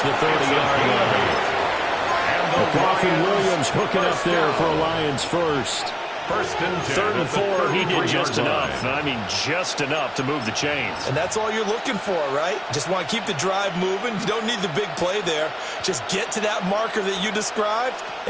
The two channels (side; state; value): both; identical; correlation 1.00